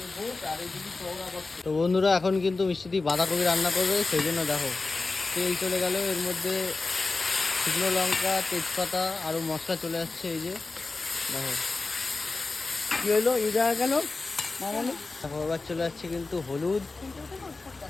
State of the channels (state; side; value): quieter; right; 3.7 dB